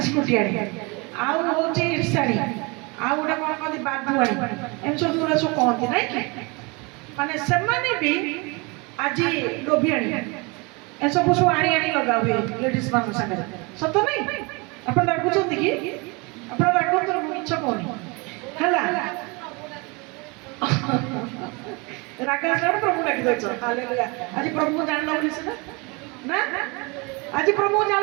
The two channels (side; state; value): left; quieter; 28.4 dB